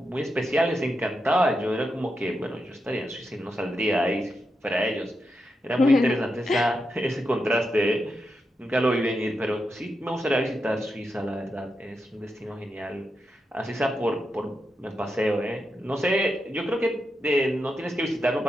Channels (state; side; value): normal; both; correlation 0.86